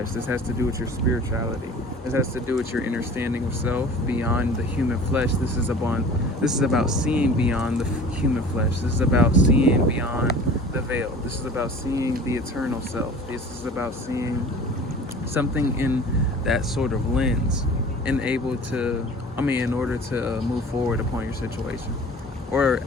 this has to do with your spirituality. This has to do with your understanding of self beyond the human flesh. This is about seeing beyond the human flesh. This is about seeing beyond the veil. This is about seeing the eternal self. This is about seeing something in that sort of lens in order to move forward upon your situation. Or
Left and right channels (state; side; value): normal; both; correlation 0.43